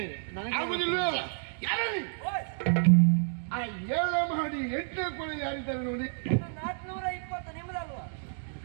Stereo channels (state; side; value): silent; left; digital silence